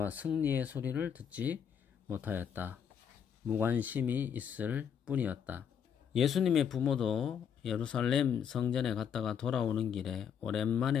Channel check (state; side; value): quieter; right; 7.8 dB